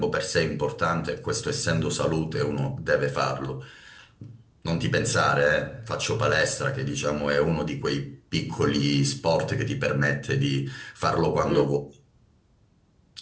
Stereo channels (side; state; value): both; identical; correlation 1.00